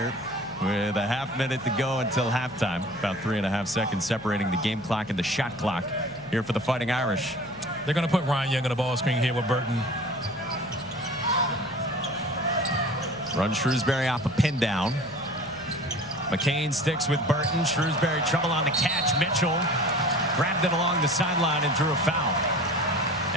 with a half minute to go until halftime. About 3.5 seconds separating the game clock and the shot clock here for the Fighting Irish. They're going to put Ryan Young on the ball screen here with Burton. Run Shrewsbury off a pin down. McCain sticks with Burton. Shrewsbury trouble on the catch. Mitchell grabbed it along the sideline and drew a foul.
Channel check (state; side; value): noise; left; hum, 19 dB below the sound